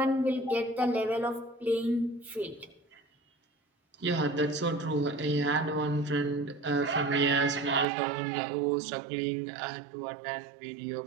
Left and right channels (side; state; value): left; drops out; at 7.9 s